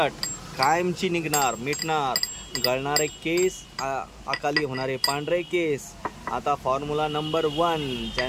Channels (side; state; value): both; identical; correlation 1.00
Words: कायमची निघणार मिटणार. गळणारे केस, अकाली होणारे पांढरे केस. आता फॉर्म्युला नंबर 1.